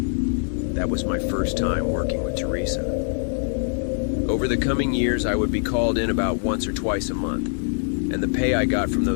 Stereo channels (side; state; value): right; silent; 59 dB below the other